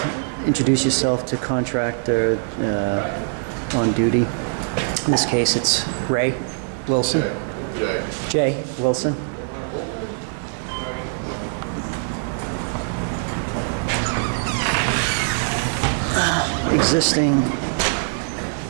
introduce yourself to contractor on duty. In this case, it's Ray Wilson. Jay Wilson. Existing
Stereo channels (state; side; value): silent; left; 64 dB below the other